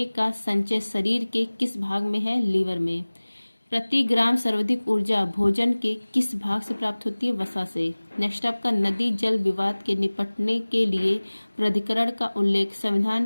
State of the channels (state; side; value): inverted; both; correlation -1.00